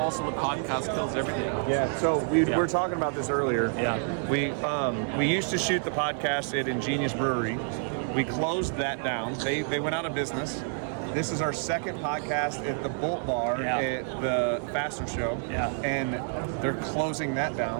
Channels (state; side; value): silent; left; 56 dB below the other